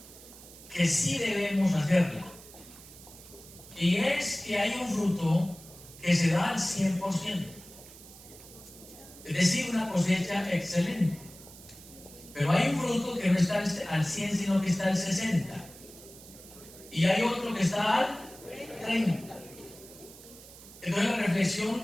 que sí debemos hacerla. Y es que hay un fruto que se da al 100%. Es decir, una cosecha excelente. Pero hay un fruto que no está al 100, sino que está al 60. Y hay otro que está al 30. Entonces la reflexión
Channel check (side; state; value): right; noise; hiss, 19 dB below the sound